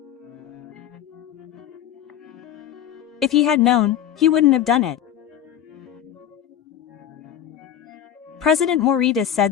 If he had known, he wouldn't have done it. President Morita said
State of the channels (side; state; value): right; quieter; 10.2 dB